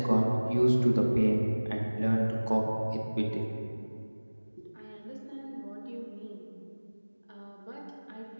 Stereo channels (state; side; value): inverted; both; correlation -1.00